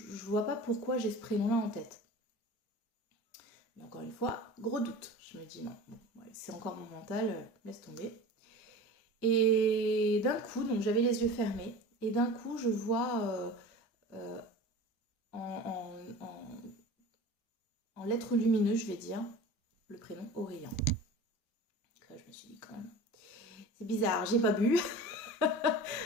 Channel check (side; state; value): both; normal; correlation 0.36